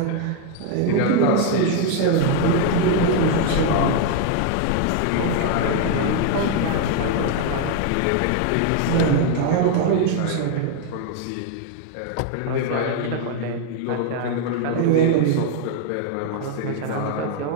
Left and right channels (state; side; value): different; both; correlation 0.01